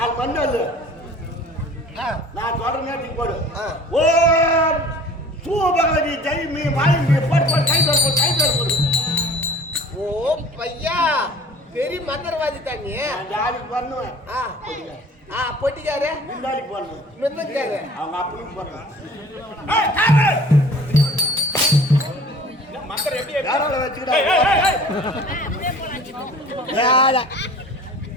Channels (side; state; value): both; normal; correlation 0.47